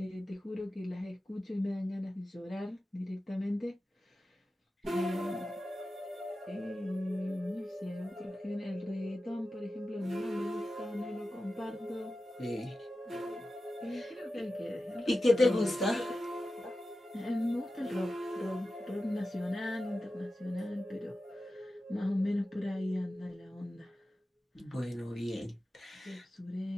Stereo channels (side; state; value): both; normal; correlation 0.93